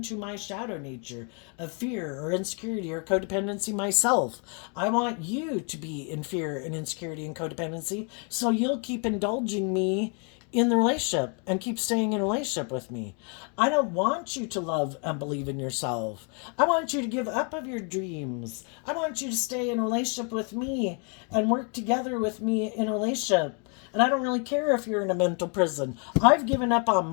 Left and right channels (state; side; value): quieter; right; 38.0 dB